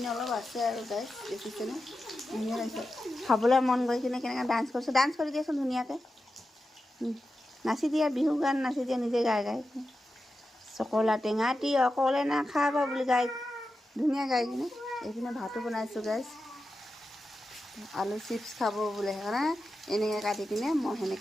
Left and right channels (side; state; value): both; normal; correlation 0.91